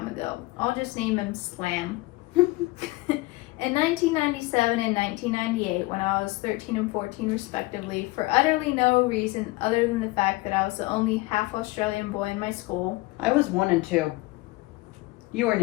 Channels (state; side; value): quieter; right; 21.2 dB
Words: ago. I'll just name him Slam. In 1997 and 1998, when I was 13 and 14 respectively, for utterly no reason other than the fact that I was the only half Australian boy in my school. I was 1 and 2. You weren't